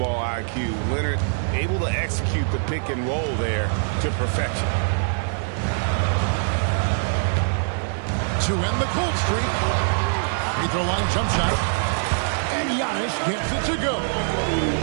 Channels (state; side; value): silent; left; digital silence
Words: IQ, Leonard able to execute the pick and roll there to perfection. To end the cold streak. Free throw line jump shot. And Giannis gets it to go.